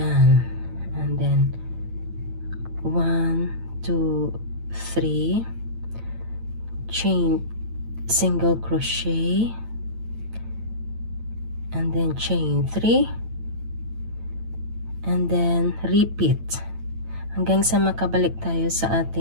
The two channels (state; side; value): late; left; 8.9 ms